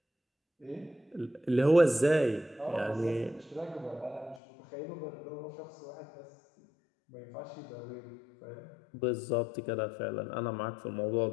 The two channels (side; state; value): right; drops out; at 4.4 s